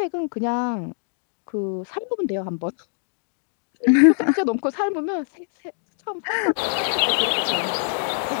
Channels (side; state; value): right; silent; digital silence